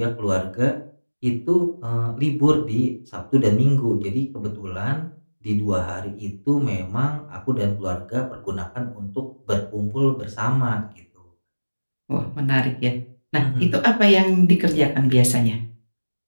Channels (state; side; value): inverted; both; correlation -1.00